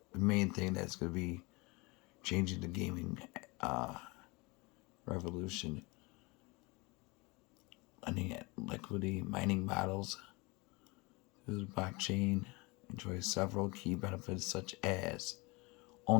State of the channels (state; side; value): quieter; right; 25.8 dB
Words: the main thing that's going to be changing the gaming revolution. Lending at liquidity mining models through the blockchain enjoys several key benefits such as